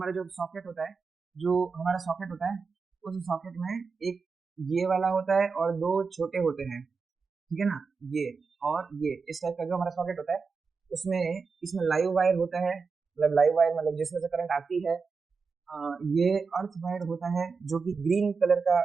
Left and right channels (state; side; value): quieter; left; 4.9 dB